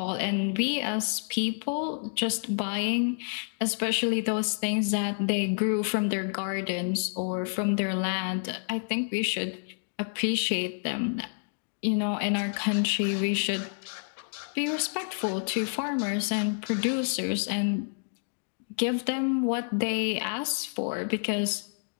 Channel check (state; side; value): silent; right; digital silence